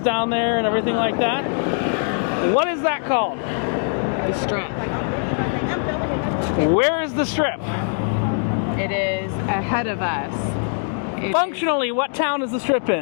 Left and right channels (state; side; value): silent; right; 59 dB below the other